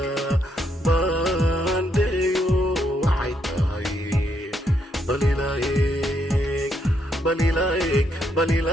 baandheeyo waxay tahay balilaayeg balilaayeg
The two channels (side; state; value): both; normal; correlation 0.76